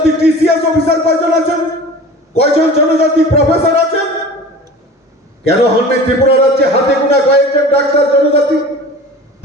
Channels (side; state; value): both; normal; correlation 0.39